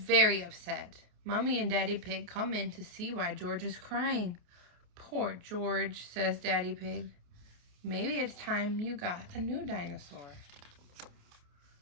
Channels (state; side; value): late; left; 28 ms